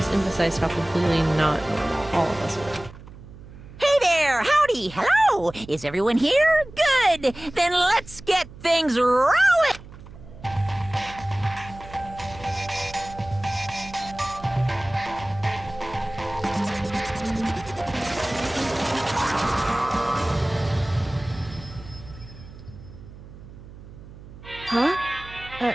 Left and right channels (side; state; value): right; noise; hum, 17 dB below the sound